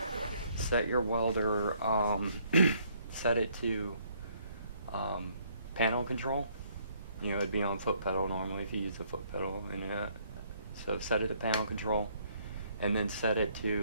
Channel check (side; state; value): both; inverted; correlation -0.66